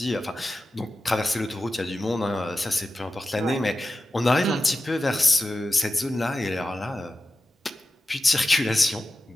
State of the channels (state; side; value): normal; both; correlation 0.93